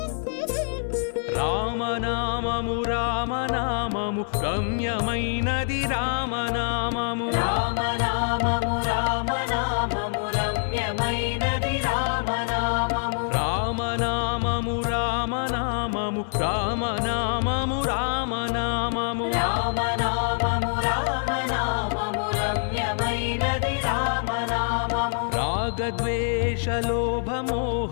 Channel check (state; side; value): silent; right; 61 dB below the other